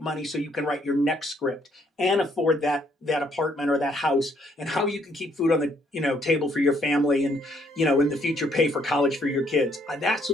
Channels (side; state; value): both; normal; correlation 0.68